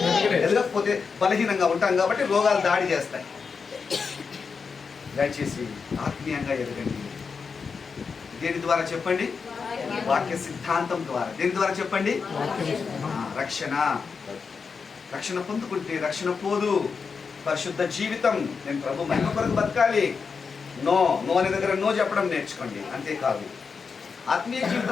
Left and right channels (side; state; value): right; quieter; 5.4 dB